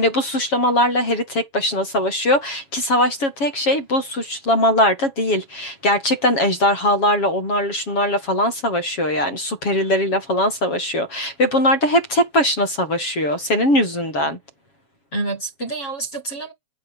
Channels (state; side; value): late; right; 7.2 ms